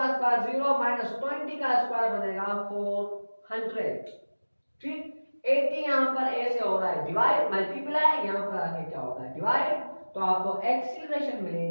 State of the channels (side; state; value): both; inverted; correlation -1.00